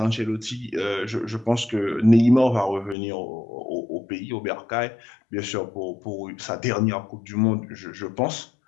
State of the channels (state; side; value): drops out; right; at 3.0 s